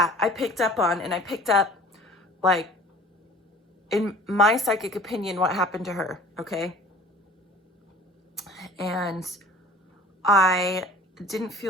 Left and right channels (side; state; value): both; normal; correlation 0.46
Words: I picked up on, and I picked up, like, in my psychic opinion, what happened to her, okay? And I didn't